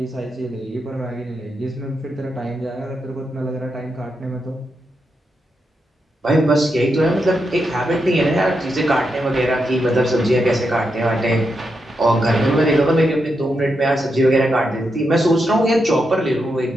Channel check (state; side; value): normal; both; correlation 0.85